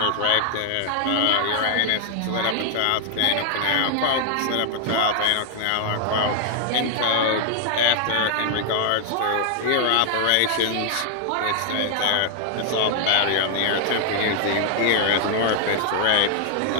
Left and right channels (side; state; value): both; different; correlation 0.00